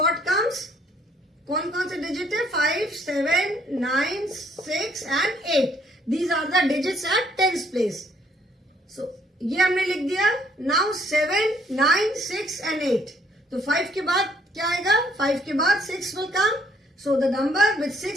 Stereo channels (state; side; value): normal; both; correlation 0.66